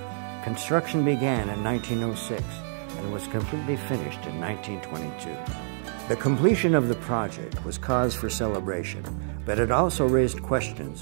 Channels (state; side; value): silent; left; digital silence